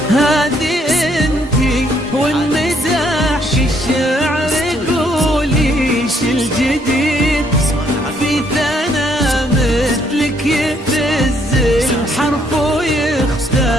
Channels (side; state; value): both; normal; correlation 0.69